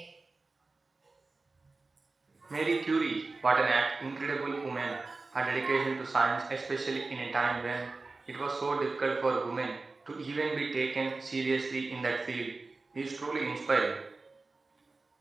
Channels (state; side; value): quieter; left; 3.6 dB